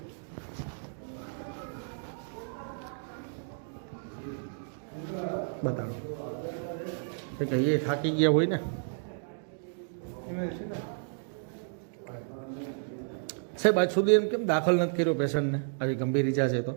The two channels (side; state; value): left; silent; digital silence